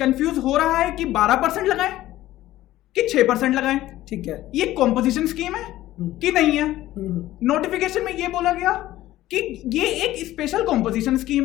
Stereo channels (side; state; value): right; quieter; 15.1 dB